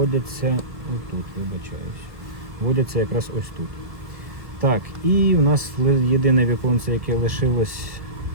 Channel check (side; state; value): left; late; 1.7 ms